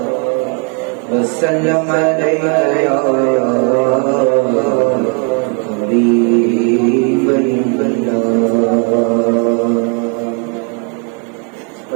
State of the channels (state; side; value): quieter; left; 37.9 dB